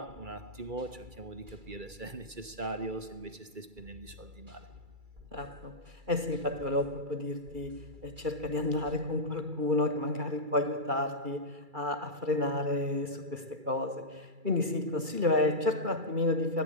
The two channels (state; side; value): late; left; 2.3 ms